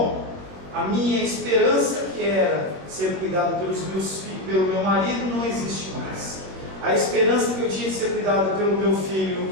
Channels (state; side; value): late; left; 22 ms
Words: a minha esperança, que era ser cuidado pelos meus filhos, pelo meu marido, não existe mais. A esperança que eu tinha de ser cuidado pelo meu filho